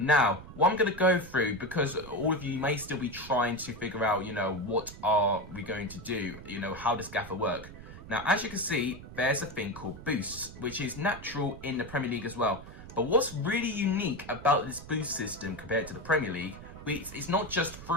what I'm going to go through, because all of you may still be trying to figure out, you know, what are we going to do? You know, how does Gaffer work? Now, as you can see, there's a thing called boosts, which is natural in the Premier League as well. But what's really unique about this boost system compared to the Premier League, it's not just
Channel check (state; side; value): noise; right; rumble, 15 dB below the sound